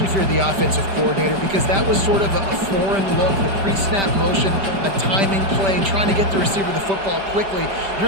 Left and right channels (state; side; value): late; left; 5.1 ms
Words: if you're the offensive coordinator, because that was sort of a foreign look, the pre-snap motion, a timing play, trying to get the receiver the football quickly.